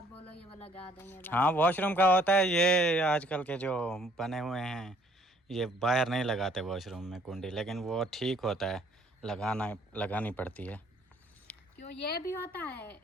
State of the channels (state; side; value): normal; both; correlation 0.61